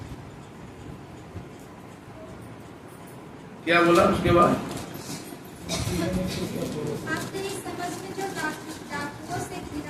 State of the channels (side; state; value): both; identical; correlation 1.00